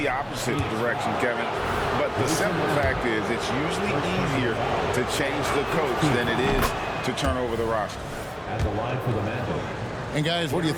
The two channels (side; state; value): both; identical; correlation 1.00